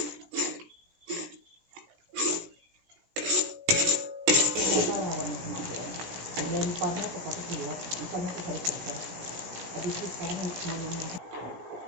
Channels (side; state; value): left; late; 17 ms